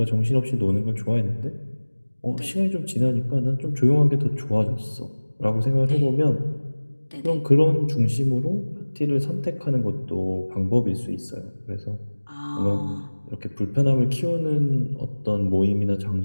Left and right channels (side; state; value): both; inverted; correlation -1.00